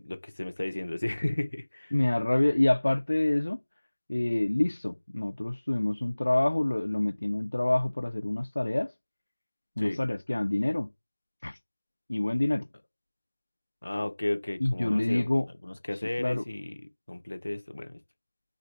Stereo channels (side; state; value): both; inverted; correlation -1.00